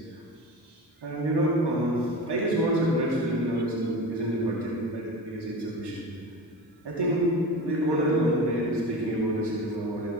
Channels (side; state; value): both; normal; correlation 0.30